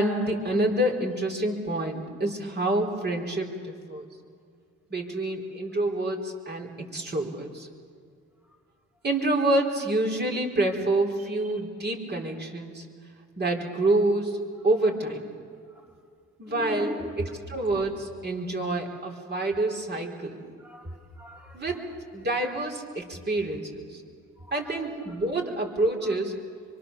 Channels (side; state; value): both; normal; correlation 0.53